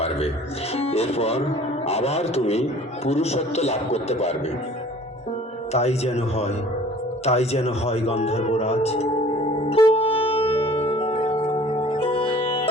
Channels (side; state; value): both; normal; correlation 0.49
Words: এরপর আবার তুমি পুরুষত্ব লাভ করতে পারবে। তাই যেন হয়, তাই যেন হয় গন্ধর্বরাজ।